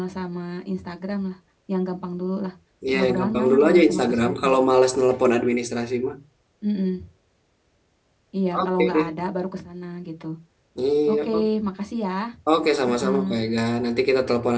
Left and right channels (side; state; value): both; identical; correlation 1.00